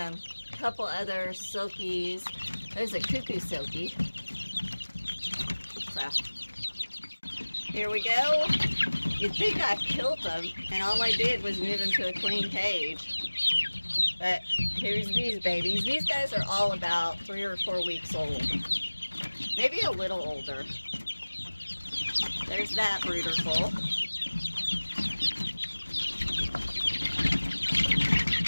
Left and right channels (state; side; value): inverted; both; correlation -1.00